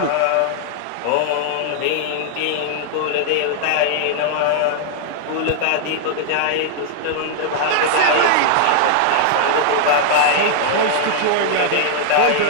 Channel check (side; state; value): both; different; correlation 0.00